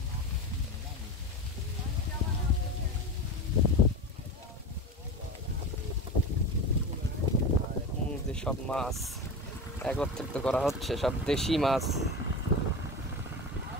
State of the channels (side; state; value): both; normal; correlation 0.27